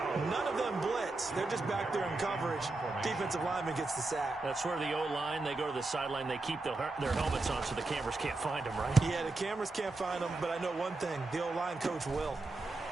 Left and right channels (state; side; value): quieter; left; 3.2 dB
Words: None of them blitz. They're just back there in coverage. Defensive lineman gets the sack. That's where the O-line, they go to the sideline, they keep their helmets on so the cameras can't find them, right? Yeah, the cameras can't find them, but I know one thing. The O-line coach will.